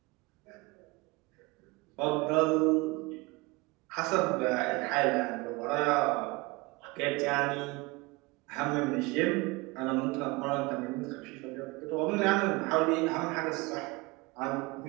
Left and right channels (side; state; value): left; quieter; 24.5 dB